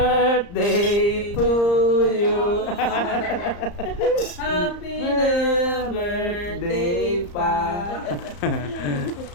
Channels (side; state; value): right; late; 34 ms